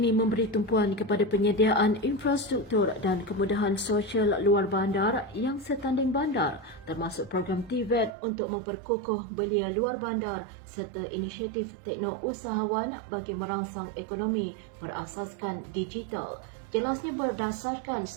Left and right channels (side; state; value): left; drops out; at 8.1 s